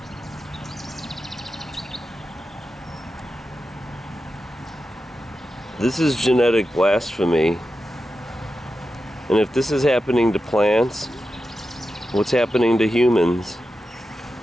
This is genetic blasphemy. And if this is happening to plants, what's happening to humans?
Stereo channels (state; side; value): normal; both; correlation 0.91